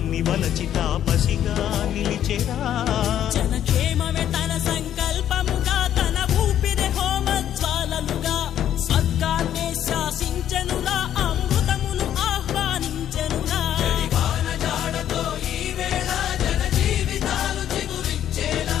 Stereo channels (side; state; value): right; quieter; 10.7 dB